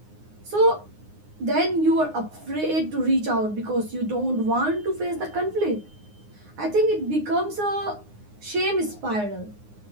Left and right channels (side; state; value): left; late; 9.6 ms